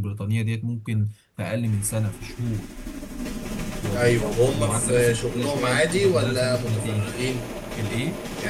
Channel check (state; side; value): identical; both; correlation 1.00